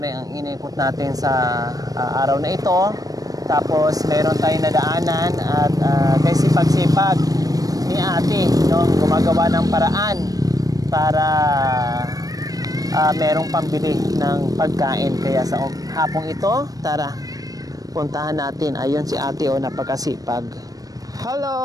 ang inikot natin sa araw na ito. Tapos meron tayong nadaanan at kay sipag-sipag ni ate, no, gumagawa ng paraan para merong pambili ng pagkain. Kaya sa hapong ito, tara, puntahan natin. Ayun si ate, oh, napakasipag. Hello!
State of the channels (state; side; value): late; left; 0.18 ms